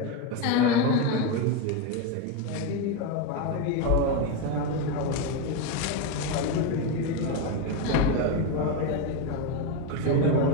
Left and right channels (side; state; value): both; different; correlation 0.04